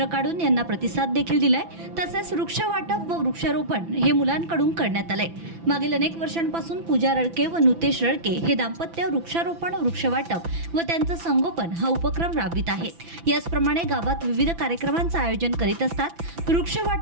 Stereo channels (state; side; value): late; left; 5.9 ms